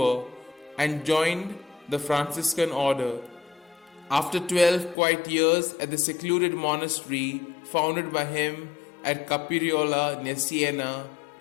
and joined the Franciscan order. After 12 quiet years at the secluded monastery founded by him at Capiriola near Siena,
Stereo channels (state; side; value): drops out; right; at 5.0 s